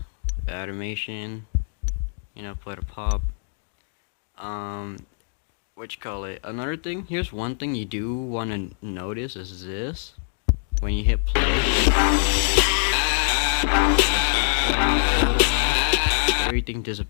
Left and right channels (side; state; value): right; silent; digital silence